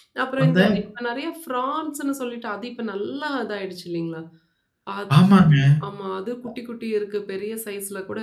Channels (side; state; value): both; identical; correlation 1.00